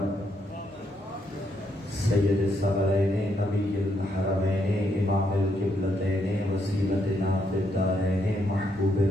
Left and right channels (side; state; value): both; normal; correlation 0.76